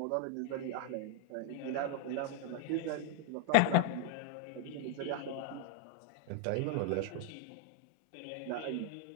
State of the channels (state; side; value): different; both; correlation 0.00